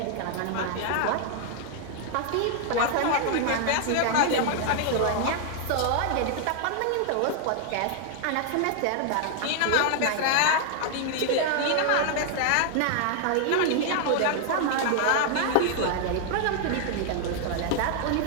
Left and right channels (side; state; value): both; different; correlation 0.00